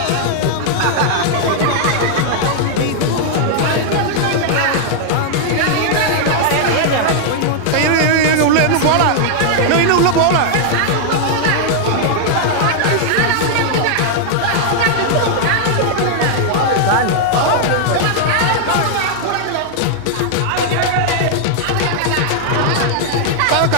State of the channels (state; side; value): different; both; correlation 0.00